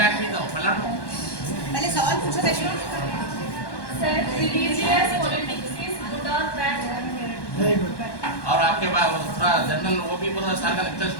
भी दो। पहले सवाल पूछो Reshma. Sir, religious politics is good और बैड? Very good. और आपके बाद थोड़ा जनरल वो भी बोलो, सारा का लेक्चर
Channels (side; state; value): right; late; 1.1 ms